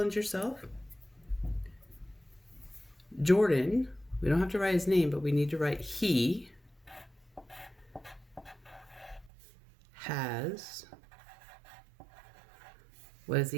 yourself, Jordan, we don't have to write his name, but we need to write he has, what does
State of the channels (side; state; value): left; drops out; at 9.3 s